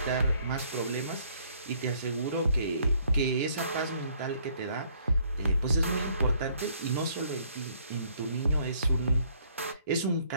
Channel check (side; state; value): both; inverted; correlation -0.64